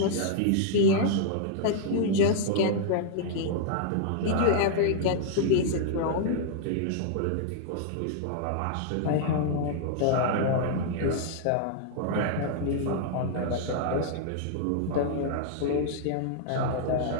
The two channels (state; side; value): different; both; correlation -0.01